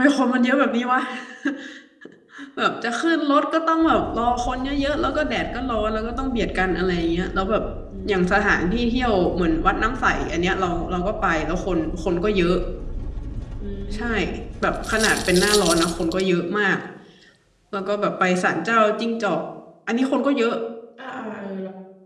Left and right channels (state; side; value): identical; both; correlation 1.00